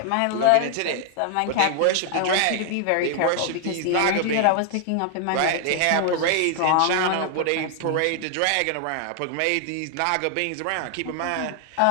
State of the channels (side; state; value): both; different; correlation 0.00